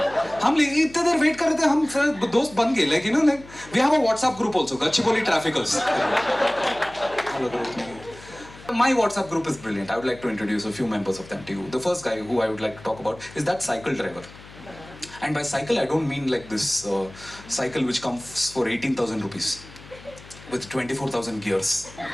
हम इतने देर wait कर रहे थे, हम दोस्त बन गए, like we have a WhatsApp group also, Gachibowli Traffickers. My WhatsApp group is brilliant. I would like to introduce a few members of them to you. The first guy who I would like to talk about is that cycle driver. And by cycle, I don't mean like this cycle which comes for 18,000 rupees with 24,000 gears.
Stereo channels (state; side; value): noise; left; hum, 19 dB below the sound